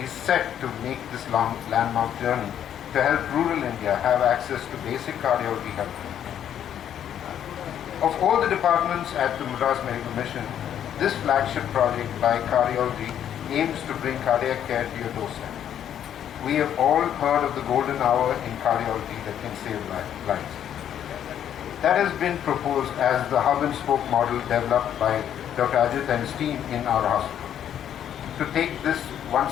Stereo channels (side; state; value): right; quieter; 9.9 dB